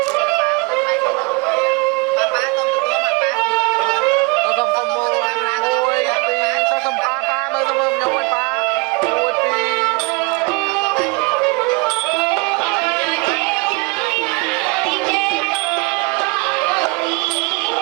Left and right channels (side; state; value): left; quieter; 28.3 dB